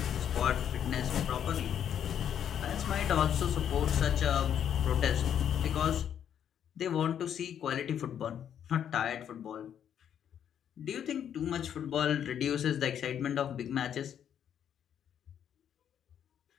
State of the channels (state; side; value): quieter; right; 9.2 dB